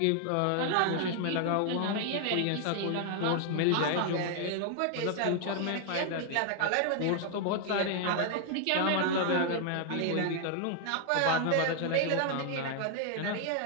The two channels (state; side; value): different; both; correlation 0.00